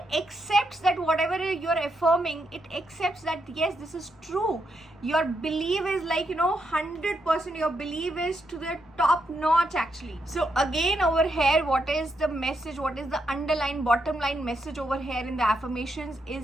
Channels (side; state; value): both; normal; correlation 0.81